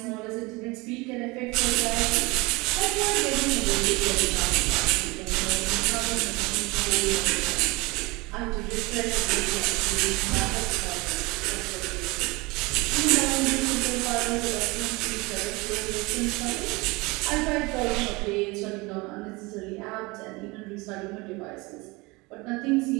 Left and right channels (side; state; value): left; quieter; 24.4 dB